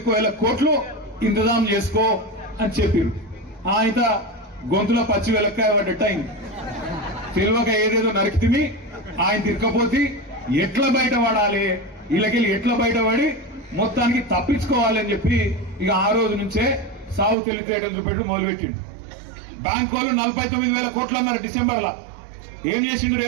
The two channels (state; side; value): drops out; left; at 17.4 s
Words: కోట్లు ఇంతజాం చేసుకో అని చెప్పారు. ఆయన గొంతులో పచ్చి వెలక్కాయ పడ్డట్టు అయింది. తెలివక ఏదేదో నరికితిమి, ఆయన తిరగపోతే ఎట్లా బయటపడాలి, వీళ్ళకెళ్ళి ఎట్లా బయటపడి మొత్తానికి తప్పించుకోవాలి అని చెప్పి ఇక ఆ రోజు నుంచే సాగు తెలివితేటలు చూపెట్టు మొదలుపెట్టిండు. బ్యాంకు వాళ్ళు 49,000 కోట్లు అన్నారు డిసెంబర్లో. ఏం చేసిండు